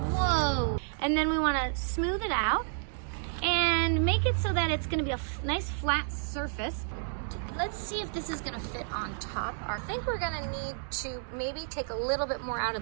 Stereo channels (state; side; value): silent; left; digital silence